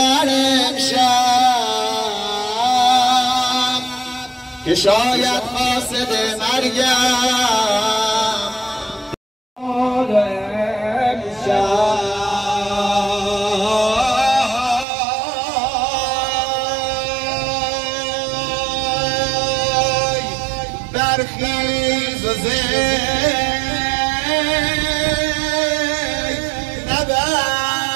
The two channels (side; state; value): left; drops out; at 14.9 s